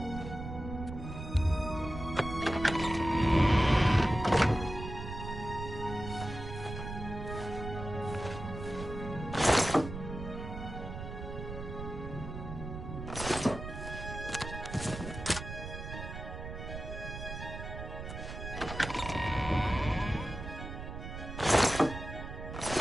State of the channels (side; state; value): right; noise; rumble, 8 dB below the sound